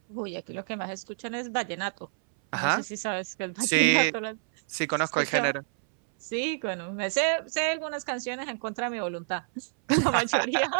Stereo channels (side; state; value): left; silent; 59 dB below the other